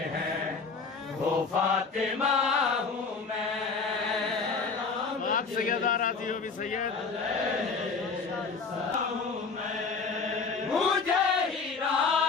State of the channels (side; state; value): right; quieter; 4.8 dB